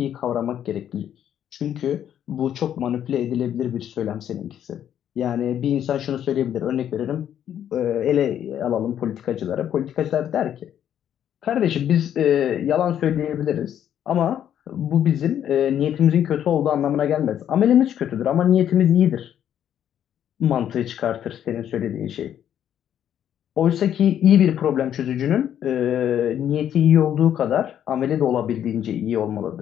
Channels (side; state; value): right; quieter; 10.0 dB